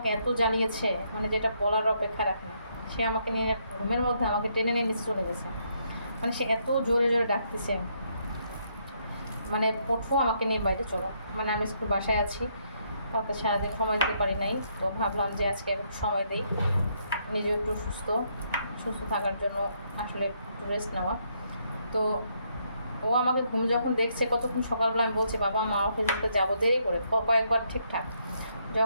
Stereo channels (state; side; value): inverted; both; correlation -0.74